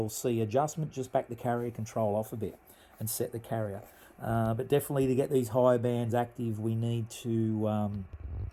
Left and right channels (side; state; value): both; identical; correlation 1.00